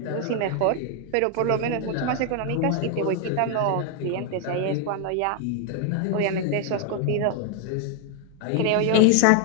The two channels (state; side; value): different; both; correlation 0.00